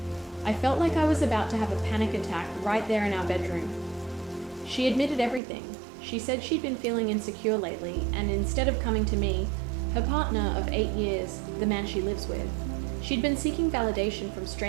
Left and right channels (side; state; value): left; drops out; at 5.4 s